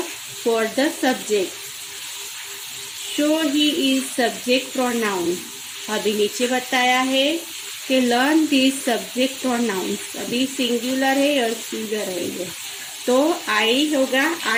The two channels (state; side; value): identical; both; correlation 1.00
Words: for the subject. So he is subject pronoun. अभी नीचे बताया है कि लर्न दिस सब्जेक्ट प्रोनाउंस. अभी सिंगुलर है और सिंगुलर है ये. तो आई होगा,